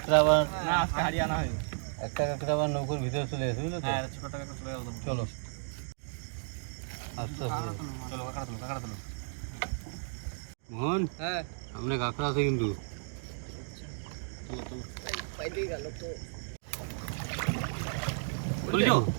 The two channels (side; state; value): left; silent; digital silence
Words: একটা আবার না আজকে হারিয়ে আনা হয়নি। একটা কাঁকড়া আবার নৌকোর ভিতরে চলে গেছে বুঝলো তো। হ্যাঁ ছোট টাকা চলে গেল। চলো আস্তে আস্তে চলো কাঁকড়া তুলো, কাঁকড়া তুলো। মোহন হ্যাঁ সামনে কাঁকড়া আছে কিন্তু। তুলো তুলো। পাইতে গেল তো। তুলছো?